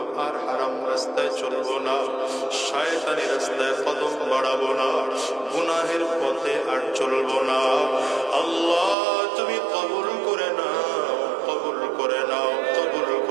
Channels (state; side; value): drops out; left; at 9.0 s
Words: আর হারাম রাস্তায় চলবো না, শয়তানি রাস্তায় কদম বাড়াবো না, গুনাহের পথে আর চলবো না। আল্লাহ, তুমি কবুল করে নাও, কবুল করে নাও, কবুল